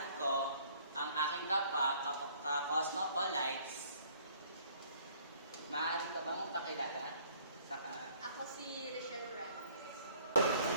ko ang aking ka-cosmopolites. Maaari ka bang pakilala? Ako si Richelle Ramos.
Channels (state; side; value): inverted; both; correlation -0.59